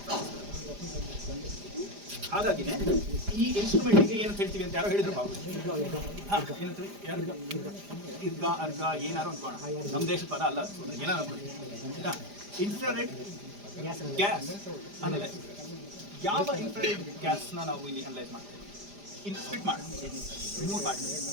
ಹಾಗಾಗಿನೇ ಈ ಇನ್ಸ್ಟ್ರೂಮೆಂಟ್ಗೆ ಏನಂತ ಹೇಳ್ತೀವಿ ಅಂತ ಯಾರೋ ಹೇಳಿದ್ರು ಬಾಬು. ಏನಂತೀವಿ? ಇರ್ಗ ಅರ್ಗ ಏನಾರು ಅನ್ಕೋಣ, ನಮ್ಮ ದೇಶದ ಪದ ಅಲ್ಲ, ಏನಾರು ಅನ್ಕೊಳ್ಳಿ. Infrared gas analyse. ಯಾವ ಇನ್ಫ್ರಾರೆಡ್ ಗ್ಯಾಸ್ನ ನಾವು ಇಲ್ಲಿ ಅನಲೈಸ್ ಮಾಡ್ತೇವೆ? ಸ್ಪ್ಲಿಟ್ ಮಾಡಿ 3 part:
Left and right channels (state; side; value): late; left; 5.0 ms